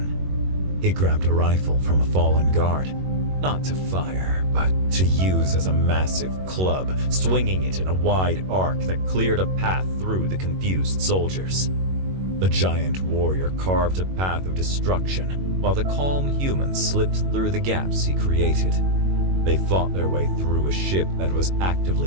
He grabbed a rifle from a fallen guard, not to fire, but to use as a massive club, swinging it in a wide arc that cleared a path through the confused soldiers. The giant warrior carved a path of destruction, while the calm humans slipped through the gaps he created. They fought their way through a ship that was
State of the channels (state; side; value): late; left; 21 ms